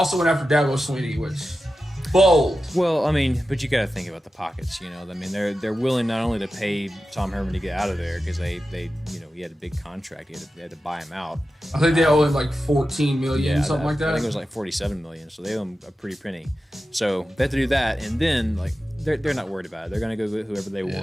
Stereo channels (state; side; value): normal; both; correlation 0.92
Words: Swinney, which bold. Well, I mean, but you got to think about the pockets. I mean, they're willing not only to pay Tom Herman to get out of there because they he had a big contract. They had to buy him out. I think they owe him like $14 million, something like that. I think it was like $47 million. So they owe him a pretty penny. So they have to do that, and then like. They're not worried about it. They're going to go get whoever they